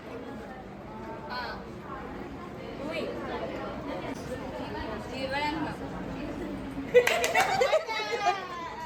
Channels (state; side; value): identical; both; correlation 1.00